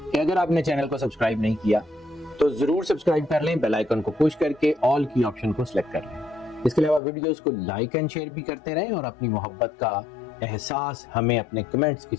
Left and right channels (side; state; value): right; drops out; at 7.0 s